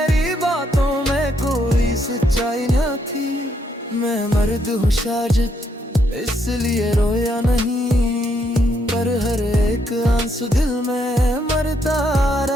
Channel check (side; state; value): both; normal; correlation 0.75